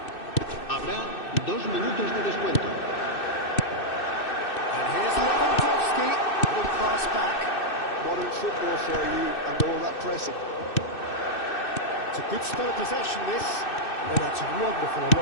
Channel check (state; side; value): late; right; 2.6 ms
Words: Habrá 2 minutos de descuento. And here's Lewandowski. Good pass back. Modern football for you and all that pressing. It's a good spell of possession, this. Oh, that's wonderful